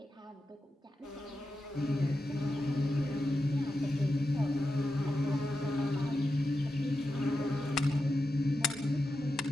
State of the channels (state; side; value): normal; both; correlation 0.90